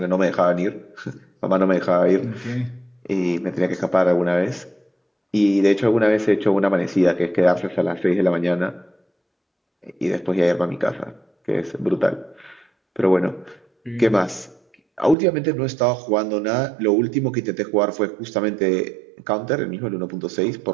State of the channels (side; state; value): left; drops out; at 15.2 s